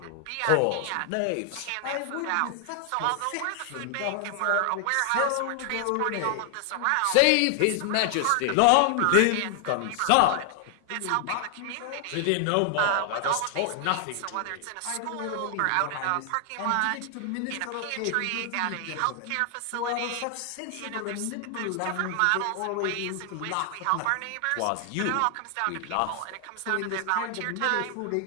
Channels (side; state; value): both; different; correlation 0.00